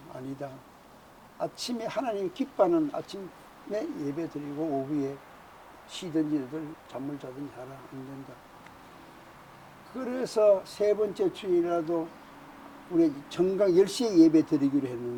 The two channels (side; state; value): both; identical; correlation 1.00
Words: 아니다. 아침에 하나님 기뻐하는 아침에 예배 드리고 오후에 쉬든지들 잠을 자든지 하라. 안 된다. 그래서 세 번째 주일이라도 우리 정각 10시에 예배 드리기로